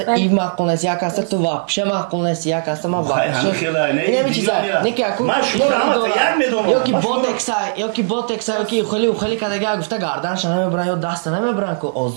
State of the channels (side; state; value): left; silent; digital silence